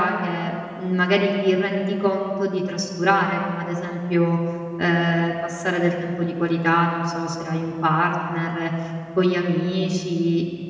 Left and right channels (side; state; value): both; identical; correlation 1.00